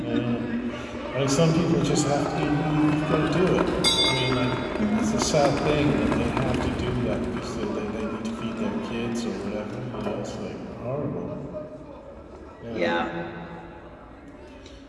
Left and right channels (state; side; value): identical; both; correlation 1.00